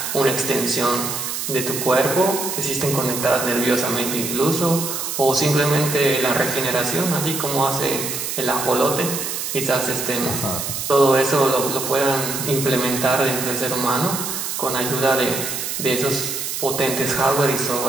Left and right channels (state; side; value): noise; right; hiss, 4 dB below the sound